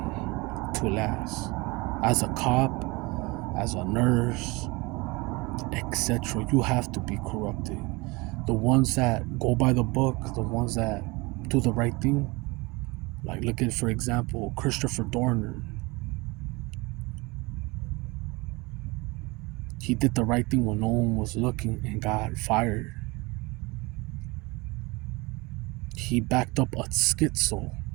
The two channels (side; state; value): left; quieter; 24.9 dB